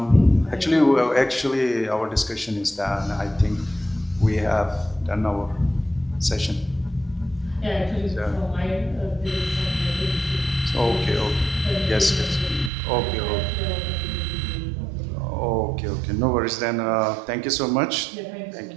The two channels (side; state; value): left; drops out; at 12.7 s